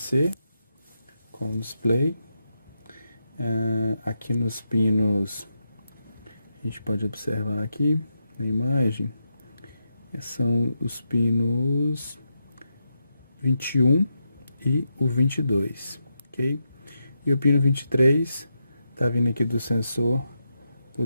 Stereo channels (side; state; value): both; inverted; correlation -0.85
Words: com o display. Aqui nos pinos a gente pode observar aqui na imagem, são os pinos 21 e o 22, ok? E o pino 23 está vindo aqui do sensor